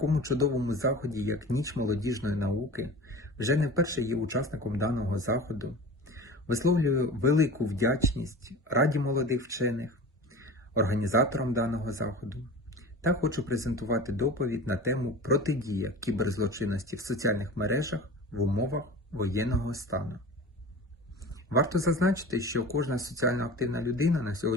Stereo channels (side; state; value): both; normal; correlation 0.35